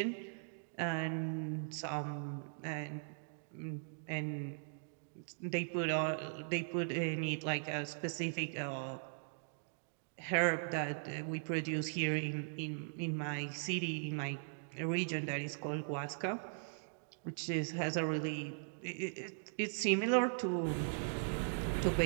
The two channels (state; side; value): silent; left; digital silence